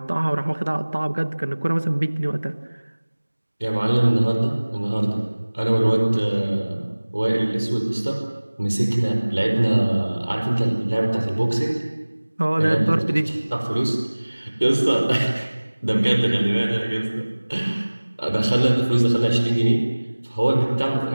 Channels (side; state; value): both; inverted; correlation -1.00